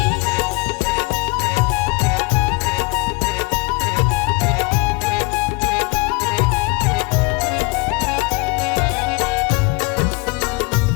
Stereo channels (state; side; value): quieter; right; 27.7 dB